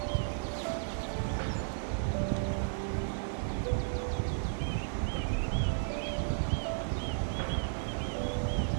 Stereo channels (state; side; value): silent; left; digital silence